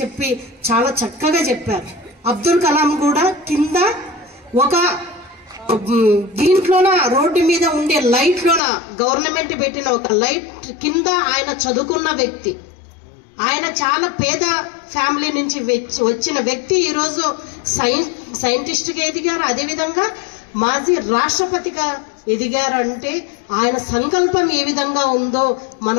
చాలా చక్కగా చెప్పారు. అబ్దుల్ కలాం కూడా కింద ఒక దీంట్లోన రోడ్డు మీద ఉండే లైట్లోన గవర్నమెంట్ పెట్టిన ఒక లైట్ కింద ఆయన చదువుకున్న వ్యక్తి. ఆయన చాలా పేద ఫ్యామిలీ నుంచి వచ్చిన వ్యక్తి ఈరోజు సైంటిస్ట్గా ఎదిగారు. అదేవిధంగా మాజీ రాష్ట్రపతిగా ఎదిగారు. అంటే ఆయన సంకల్పం ఏ విధంగా ఉందో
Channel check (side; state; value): right; drops out; at 8.6 s